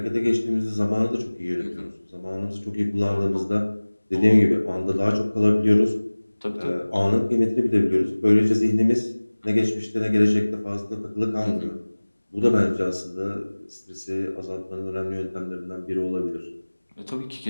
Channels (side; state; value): both; inverted; correlation -1.00